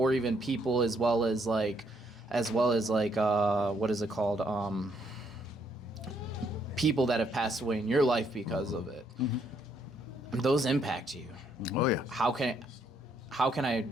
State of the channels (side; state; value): both; normal; correlation 0.72